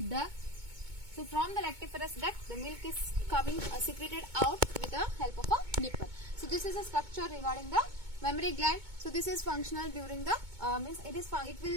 duct. So from the lactiferous duct, the milk is coming secreted out with the help of a nipple. So this is a structure regarding the mammary gland. So this is functional during the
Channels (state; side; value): late; left; 2.2 ms